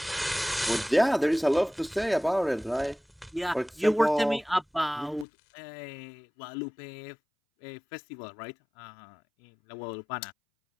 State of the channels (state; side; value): drops out; right; at 5.2 s